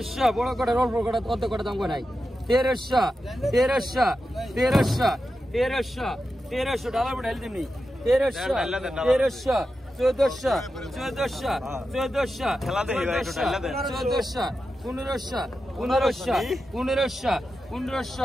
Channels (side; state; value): both; normal; correlation 0.90